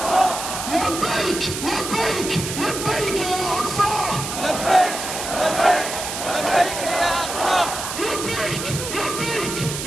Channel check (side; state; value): right; noise; hiss, 6 dB below the sound